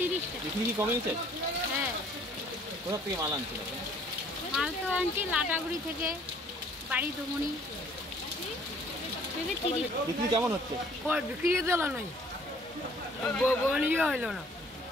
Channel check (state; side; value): normal; both; correlation 0.57